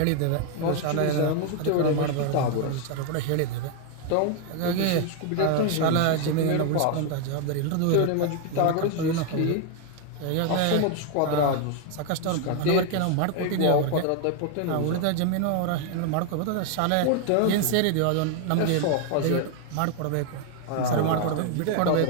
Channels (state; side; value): different; both; correlation 0.01